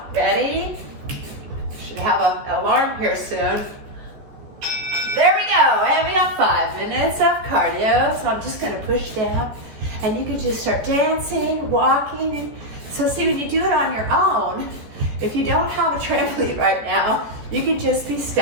Ready? Should have an alarm here soon. There we go, and we got 5 minutes of cardio. So I'm just gonna push down, and you can just start dancing, walking. And so see, when you do it on your own, if you don't have a trampoline right now, you can just be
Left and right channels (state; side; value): late; left; 14 ms